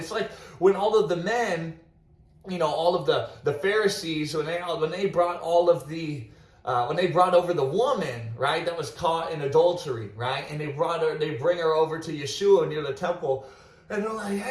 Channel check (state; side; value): identical; both; correlation 1.00